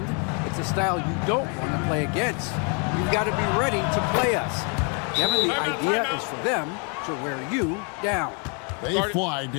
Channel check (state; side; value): quieter; right; 36.8 dB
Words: it's a style you don't want to play against. You've got to be ready to play us. Kevin, the idea is for them to wear you down. They fly,